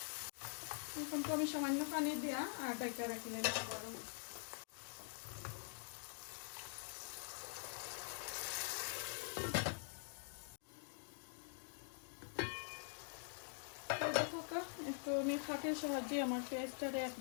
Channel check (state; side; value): silent; right; digital silence